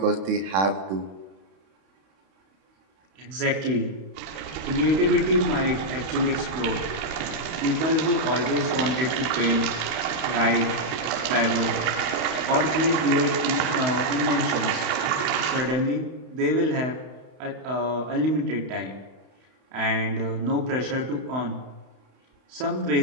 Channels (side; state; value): left; late; 31 ms